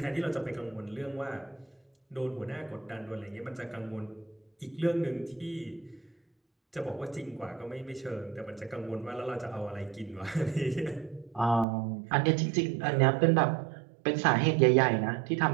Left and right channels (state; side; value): drops out; left; at 11.7 s